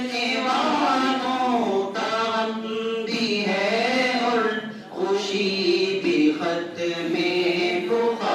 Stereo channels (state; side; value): identical; both; correlation 1.00